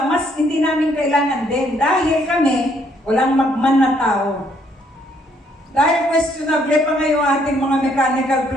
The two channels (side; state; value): both; normal; correlation 0.68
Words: mas hindi namin kailangan din dahil kami walang magman na tao. Dahil questionable pa ngayon ating mga mechanical